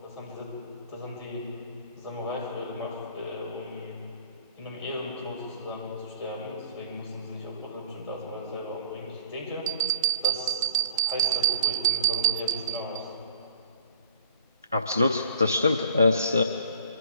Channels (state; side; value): inverted; both; correlation -0.48